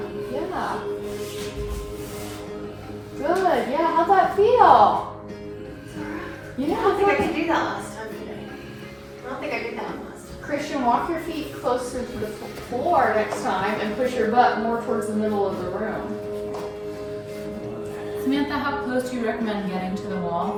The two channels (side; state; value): both; identical; correlation 1.00